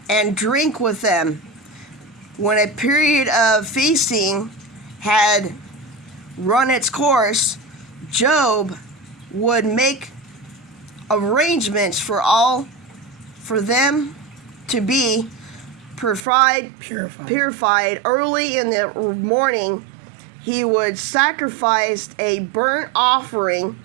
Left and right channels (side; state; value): left; drops out; at 16.2 s